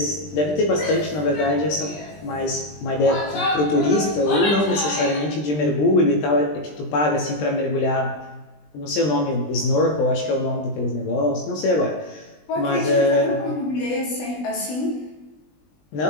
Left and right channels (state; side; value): late; right; 20 ms